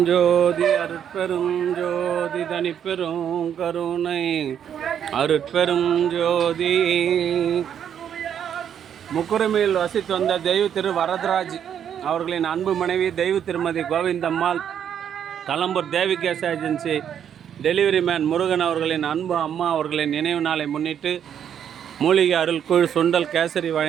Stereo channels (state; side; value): quieter; left; 8.9 dB